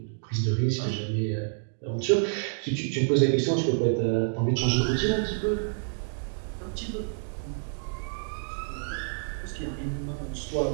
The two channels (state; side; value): silent; left; digital silence